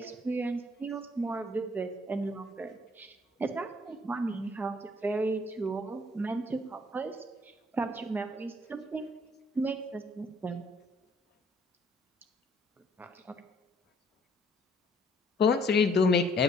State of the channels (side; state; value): both; normal; correlation 0.62